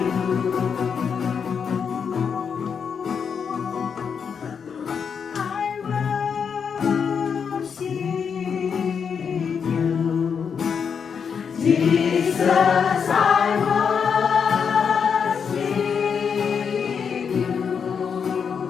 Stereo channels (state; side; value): quieter; right; 6.6 dB